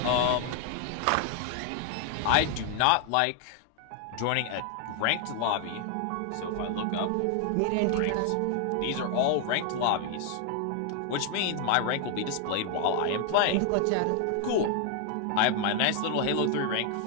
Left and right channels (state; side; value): different; both; correlation 0.00